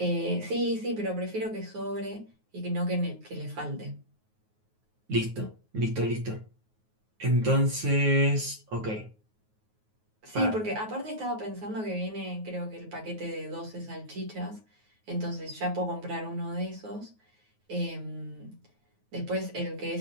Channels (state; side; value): late; left; 9.4 ms